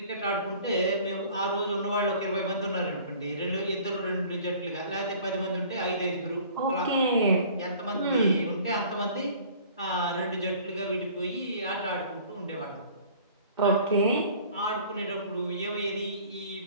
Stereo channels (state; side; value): inverted; both; correlation -0.50